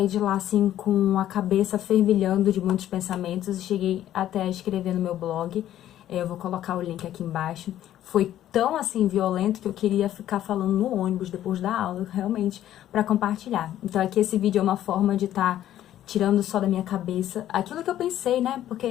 de lá assim com a cabeça fervilhando de muitos pensamentos e cheguei até a escrever no meu blog. Eu vou colocar o link aqui embaixo. Foi tão assim violento que eu queria ficar falando no ônibus depois da aula, realmente, para compartilhar. Então aqui esse vídeo é uma forma de estar tirando só da minha cabeça aquilo que eu pensei, né?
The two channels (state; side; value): quieter; right; 12.2 dB